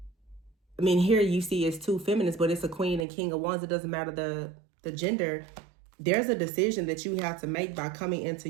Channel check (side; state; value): left; drops out; at 3.1 s